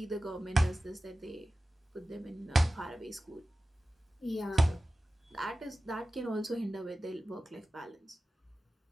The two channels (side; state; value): both; normal; correlation 0.95